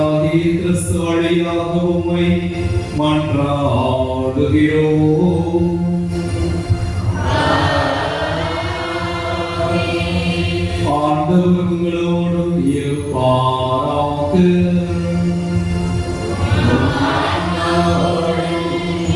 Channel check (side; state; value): both; identical; correlation 1.00